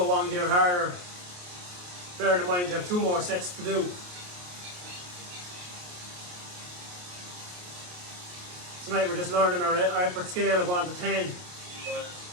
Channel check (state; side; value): late; left; 28 ms